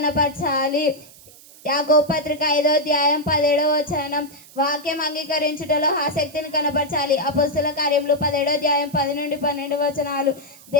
యాకోబు పత్రిక 5వ అధ్యాయం 17వ వచనం. వాక్యం అంగీకరించుటలో ఆసక్తిని కనపరచాలి. అపొస్తలుల కార్యములు 17వ అధ్యాయం 10 నుండి 12 వచనాలు.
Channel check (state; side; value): noise; right; hiss, 22 dB below the sound